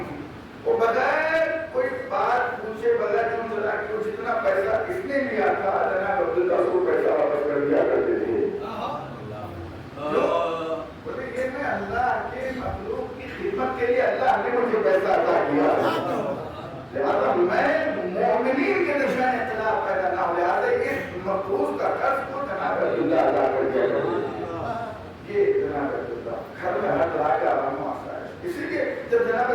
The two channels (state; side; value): identical; both; correlation 1.00